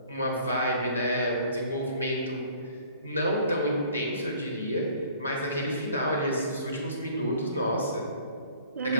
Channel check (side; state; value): both; inverted; correlation -0.53